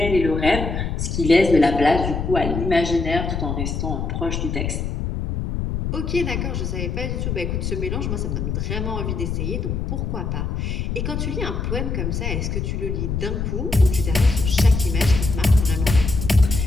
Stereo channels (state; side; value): noise; left; rumble, 2 dB below the sound